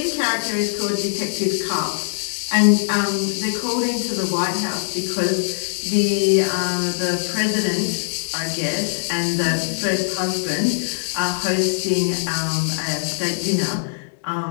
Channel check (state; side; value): silent; right; digital silence